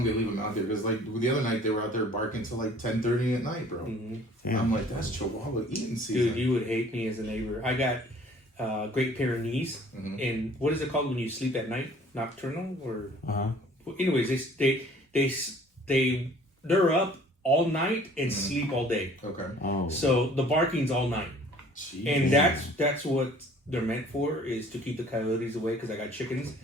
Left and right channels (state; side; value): normal; both; correlation 0.53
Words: they leave them out there? Because like the other night they were out there barking till like 10:30 at night, bro. Mm-hmm. I'm like, that's Chihuahua eating season. Dude, you would hate me as a neighbor. I got Great Pyrenees, and what is it called when you sleep at night? Nocturnal or? Well, anyways, they're up all night and sleep all day. Okay. Oh. So the barking's all night, Jeez. and that's what they're meant for, is to keep the coyotes away. Because I got chickens.